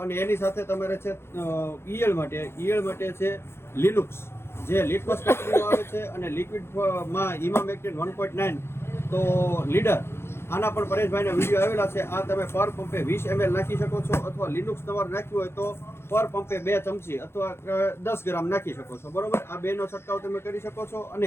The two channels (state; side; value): late; right; 0.12 ms